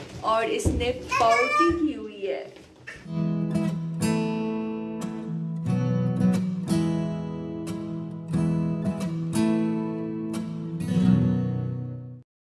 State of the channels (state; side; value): identical; both; correlation 1.00